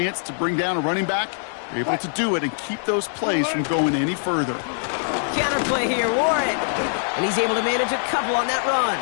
to bring down a running back, they're able to do it and keep those plays from going any further. Counterplay here, Warren. And he's able to manage a couple on that run.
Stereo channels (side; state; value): right; silent; digital silence